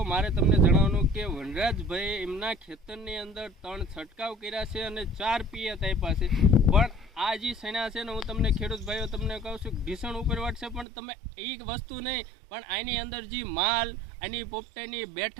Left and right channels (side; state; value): left; drops out; at 10.9 s